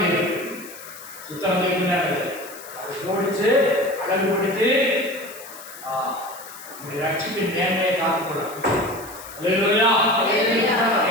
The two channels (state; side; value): noise; left; hiss, 16 dB below the sound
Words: தீர்க்குன்னு அதை ஜோடிச்சு அழகுபடுத்தி நம்முடைய ரட்சிப்பின் நேர்மையை காத்துக்கொள்ள. அல்லேலூயா.